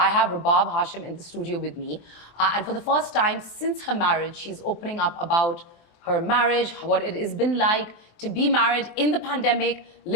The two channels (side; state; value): right; late; 23 ms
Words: have Rabab Hashim in the studio with me. And for the first time since her marriage, she's opening up about her marriage, what it has been like to be married in the pandemic,